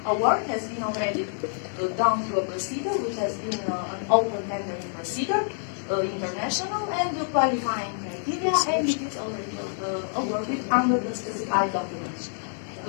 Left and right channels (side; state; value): right; silent; 60 dB below the other